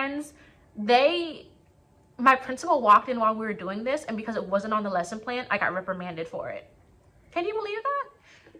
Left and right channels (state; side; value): identical; both; correlation 1.00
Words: my principal walked in while we were doing this, and because it wasn't on the lesson plan, I got reprimanded for it. Can you believe that?